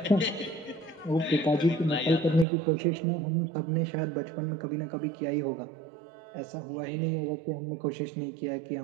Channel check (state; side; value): drops out; left; at 2.5 s